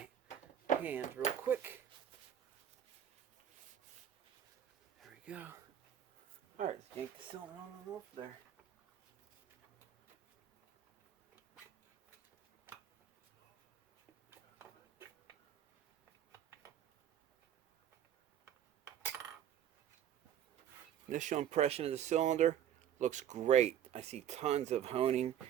hands real quick. There we go. Alright, let's yank the cylinder on and off there. Initial impression of the cylinder looks great. I see tons of honing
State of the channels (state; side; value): quieter; left; 10.3 dB